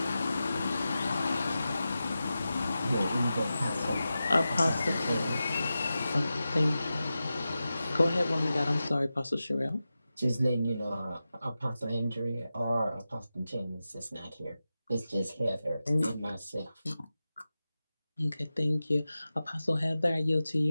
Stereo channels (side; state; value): both; inverted; correlation -0.93